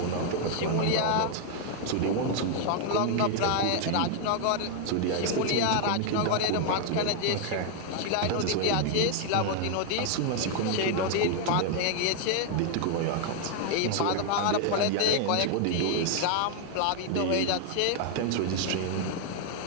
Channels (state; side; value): different; both; correlation 0.00